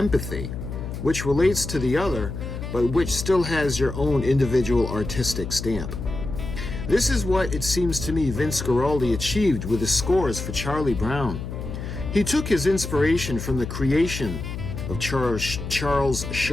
which relates to the other, but which still has your own individual artistic stamp. This is what, it seems to me, Vince Guaraldi achieved with his scores for Charlie Brown. He took his inspiration from the creation of Charles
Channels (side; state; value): left; noise; hum, 7 dB below the sound